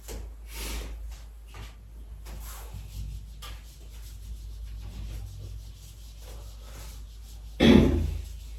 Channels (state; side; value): identical; both; correlation 1.00